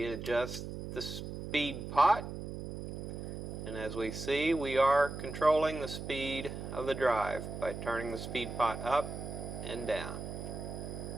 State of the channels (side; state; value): right; noise; hum, 7 dB below the sound